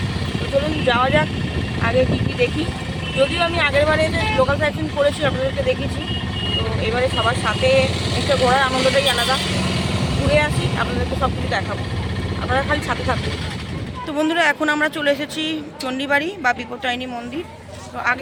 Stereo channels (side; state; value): both; identical; correlation 1.00